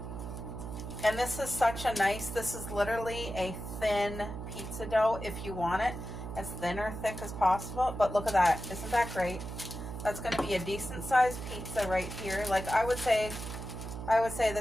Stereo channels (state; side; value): noise; right; hum, 8 dB below the sound